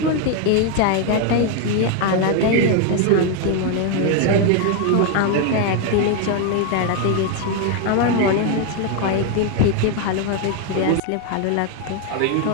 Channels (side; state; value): both; different; correlation 0.01